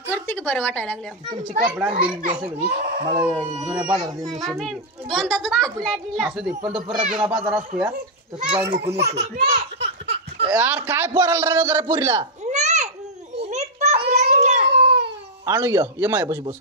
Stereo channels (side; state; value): both; normal; correlation -0.04